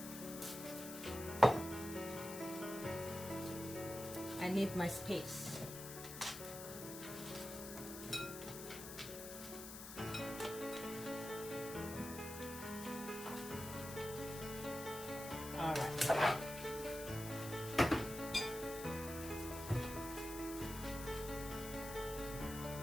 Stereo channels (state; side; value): noise; left; hiss, 10 dB below the sound